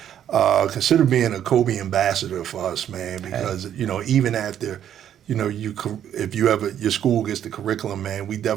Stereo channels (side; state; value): left; quieter; 10.1 dB